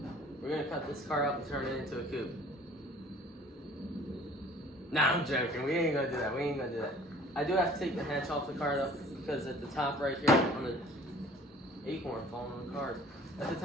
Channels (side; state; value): both; normal; correlation 0.50